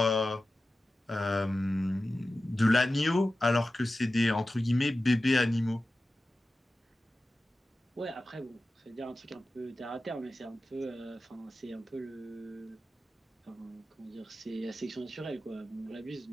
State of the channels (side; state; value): both; normal; correlation 0.94